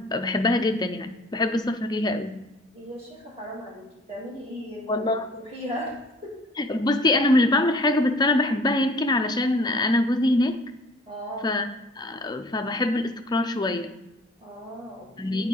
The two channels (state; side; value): normal; both; correlation 0.51